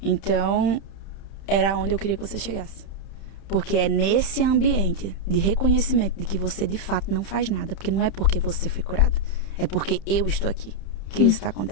Então... era onde eu queria que você chegasse. Porque é nesse ambiente de reconhecimento de que você de fato não faz nada. Porque não é porque você foi curada. É porque eu estou aqui que isso está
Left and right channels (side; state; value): right; late; 30 ms